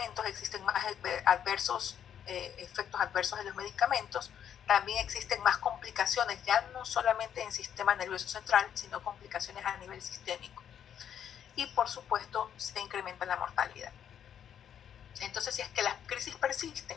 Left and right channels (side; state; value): right; quieter; 9.1 dB